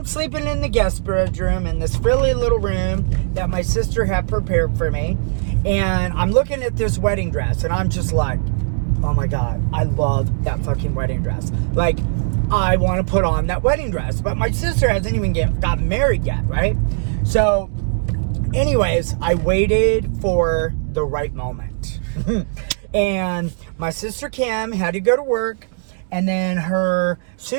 sleeping in the guest bedroom in this frilly little room that my sister had prepared for me. And I'm looking at this wedding dress, and I'm just like, oh my God, I love that fucking wedding dress. Like, I want to put on that wedding dress. But my sister hasn't even gotten married yet, right? So anyways, I waited for the right moment. And my sister Kim had to go to work, and then her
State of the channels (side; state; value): left; silent; digital silence